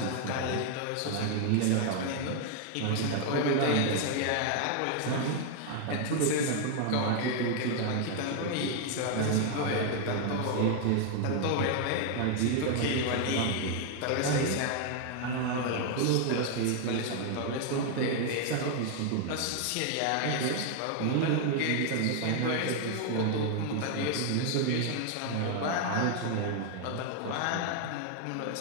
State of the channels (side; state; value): both; different; correlation 0.00